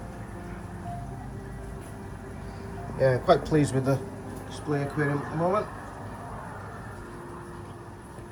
Yeah, quite pleased with the display aquarium at the moment.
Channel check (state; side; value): identical; both; correlation 1.00